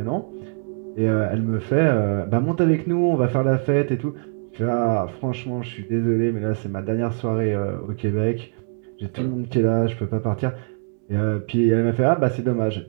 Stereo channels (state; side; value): silent; left; 64 dB below the other